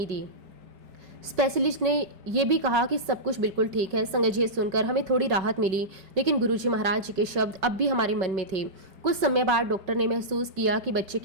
दी। स्पेशलिस्ट ने यह भी कहा कि सब कुछ बिल्कुल ठीक है। संगत जी, सुनकर हमें थोड़ी राहत मिली। लेकिन गुरुजी महाराज जी के शब्द अब भी हमारे मन में थे। कुछ समय बाद डॉक्टर ने महसूस किया कि बच्चे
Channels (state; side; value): late; left; 5.4 ms